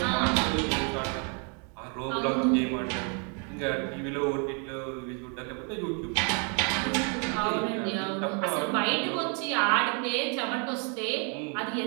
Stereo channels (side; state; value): left; quieter; 37.2 dB